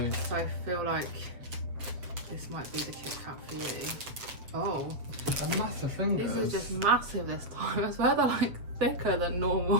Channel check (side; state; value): left; late; 7.3 ms